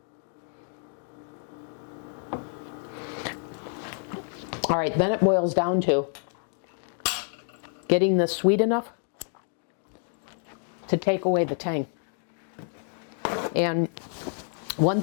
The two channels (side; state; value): right; silent; 59 dB below the other